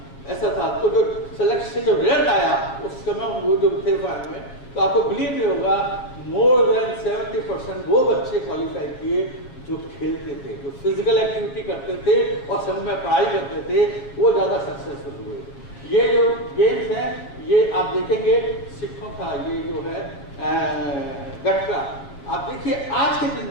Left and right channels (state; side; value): late; right; 7.5 ms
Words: ऐसा था। तो जो सेलेक्शन से जो रिजल्ट आया उस समय वो जो थे फाइनल में, तो आपको बिलीव नहीं होगा, मोर देन 70% वो बच्चे क्वालिफाई किए जो खेलते थे, जो फिजिकल एक्टिविटी करते थे और सब में पढ़ाई करते थे, वो ज़्यादा सक्सेसफुल हुए। ये जो गेम्स हैं ये आप देखेंगे सिखों का, ये जो है गटका, आप देखिए आज के दिन